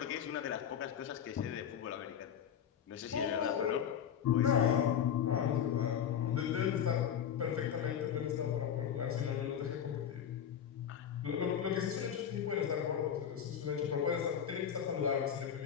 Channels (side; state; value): right; quieter; 8.8 dB